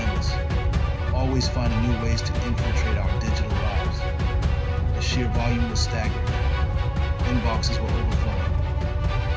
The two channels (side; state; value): both; identical; correlation 1.00